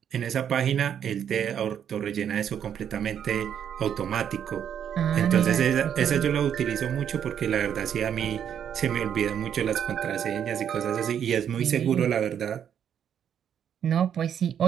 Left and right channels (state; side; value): quieter; left; 8.9 dB